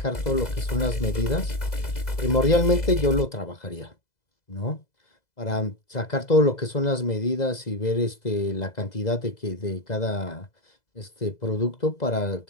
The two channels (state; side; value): late; right; 2.0 ms